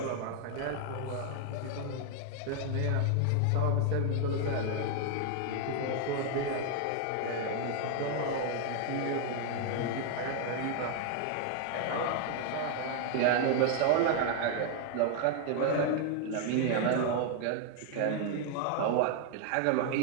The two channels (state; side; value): different; both; correlation 0.00